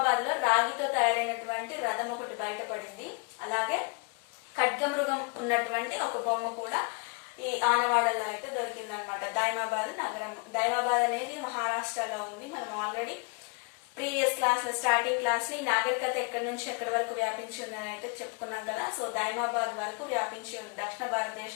లో రాగితో తయారైనటువంటి రథం ఒకటి బయటపడింది. అలాగే ఖడ్గమృగం ఉన్నటువంటి ఒక బొమ్మ కూడా ఈ ఆనవాడల్లో అయితే దొరికిందనమాట. దైమాబాద్ నగరం. దైమాబాద్ అనేది మహారాష్ట్రలో ఉంది. మనం ఆల్రెడీ ప్రీవియస్ క్లాస్ లో స్టార్టింగ్ క్లాస్ లో ఈ నాగరికత ఎక్కడి నుంచి ఎక్కడి వరకు వ్యాపించి ఉందని అయితే చెప్పుకున్నాం కదా. సో దైమాబాద్ వరకు వ్యాపించి ఉంది. దక్షిణ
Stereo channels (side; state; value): right; quieter; 34.1 dB